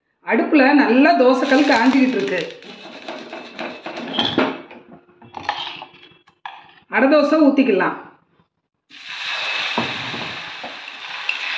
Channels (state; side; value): identical; both; correlation 1.00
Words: அடுப்பில் நல்லா தோசைக்கல் காஞ்சிக்கிட்டு இருக்கு. அடை தோசை ஊற்றிக்கலாம்.